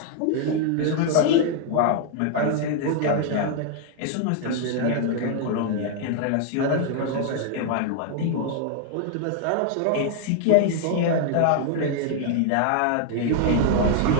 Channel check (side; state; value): both; different; correlation 0.00